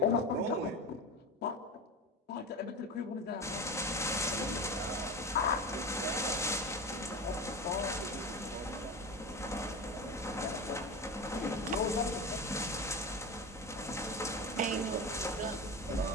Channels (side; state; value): both; normal; correlation 0.25